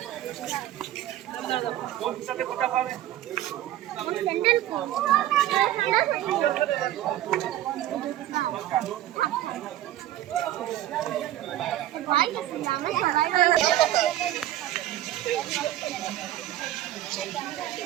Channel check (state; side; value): quieter; left; 13.6 dB